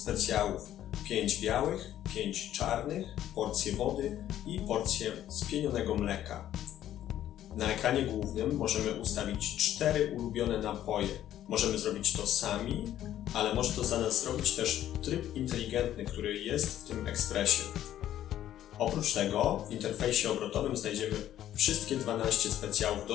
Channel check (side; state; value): right; quieter; 12.0 dB